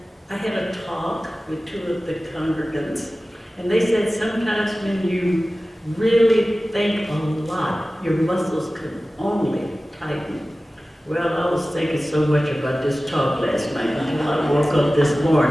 I had a talk with two of the congregants, and they said sometimes when you really think a lot, your muscles can only tighten. Well, I was thinking so much about this talk last night until I woke up this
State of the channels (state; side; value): normal; both; correlation 0.96